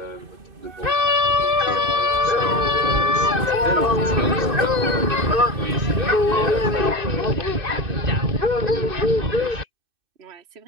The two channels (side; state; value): left; late; 2.6 ms